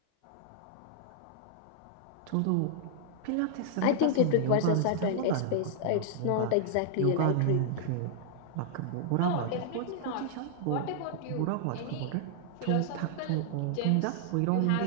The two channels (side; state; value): both; different; correlation -0.01